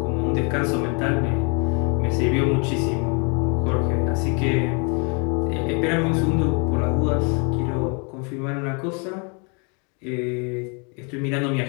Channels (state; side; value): quieter; right; 35.4 dB